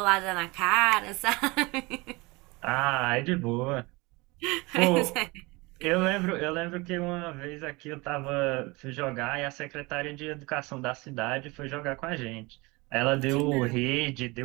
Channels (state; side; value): quieter; left; 24.6 dB